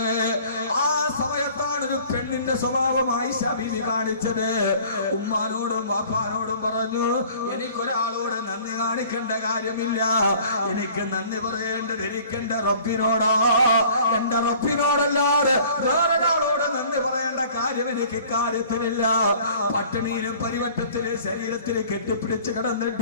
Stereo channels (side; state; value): both; inverted; correlation -0.50